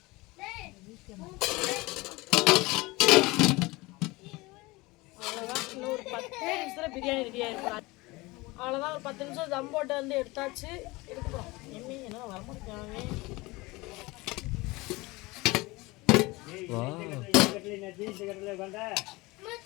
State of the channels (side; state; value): right; quieter; 22.5 dB